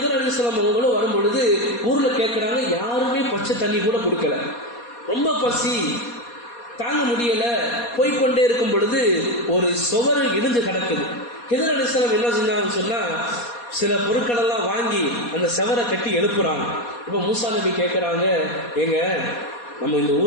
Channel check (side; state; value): right; late; 4.2 ms